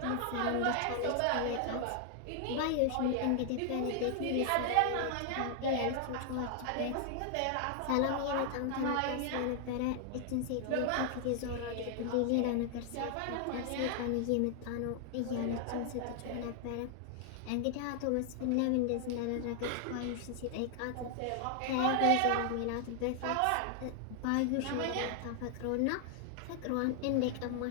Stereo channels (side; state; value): both; different; correlation 0.00